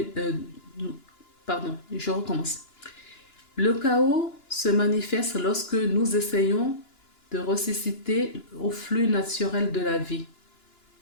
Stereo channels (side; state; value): right; late; 2.9 ms